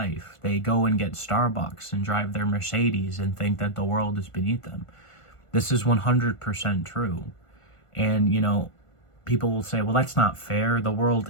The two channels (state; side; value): late; right; 1.5 ms